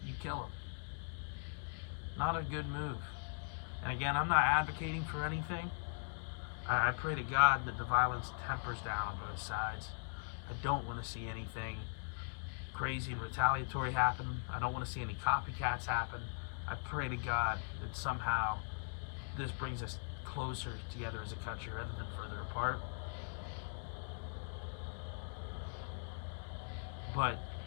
you kill him. Not a good move. And again, I'm not advocating for anything. I pray to God that the violence tempers down on both sides. I don't want to see anything crazy and retaliatory happen. I don't want to see any copycats happen. I pray to God that somehow this brings us closer together as a country rather than further apart. But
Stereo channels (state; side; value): silent; right; digital silence